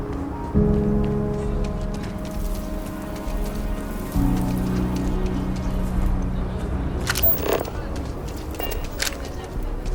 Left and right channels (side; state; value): both; identical; correlation 1.00